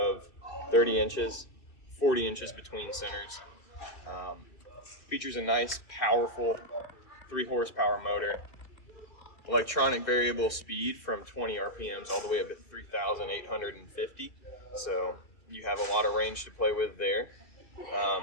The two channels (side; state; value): right; late; 2.6 ms